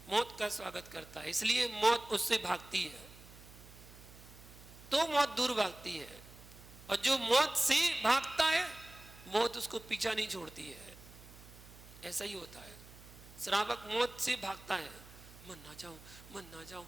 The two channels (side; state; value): right; noise; hum, 19 dB below the sound